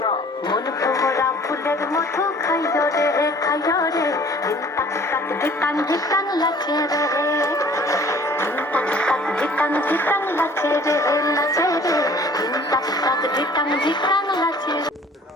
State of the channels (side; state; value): both; normal; correlation 0.52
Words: মন ভরা ফুলের মধু খাইও রে, খাইও রে, ধিটাং টাক ধিটাং ধিটাং লাচে রে, ধিটাং টাক ধিটাং ধিটাং লাচে রে, লাচে রে, ধিটাং টাক ধিটাং ধিটাং লাচে রে।